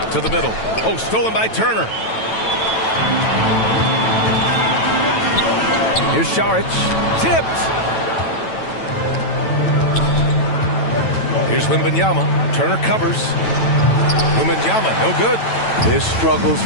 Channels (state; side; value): late; right; 9.1 ms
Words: To the middle. Oh, stolen by Turner. Here's Šarić. Tipped. Here's Wembanyama. Turner covers. Wembanyama, no good. His struggles